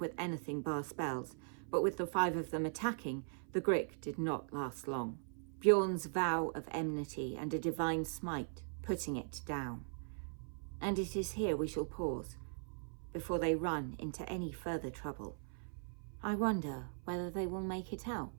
anything bar spells, but with the 5 of them attacking, the Grick did not last long. Bjorn's vow of enmity and a divine smite, putting it down. And it is here we shall pause, before they run into any further trouble. I wonder whether they will make it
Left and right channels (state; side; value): silent; left; 51 dB below the other